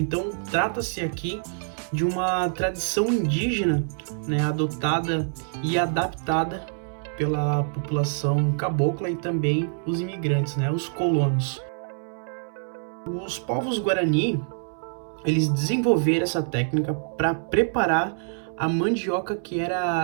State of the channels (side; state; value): left; silent; 61 dB below the other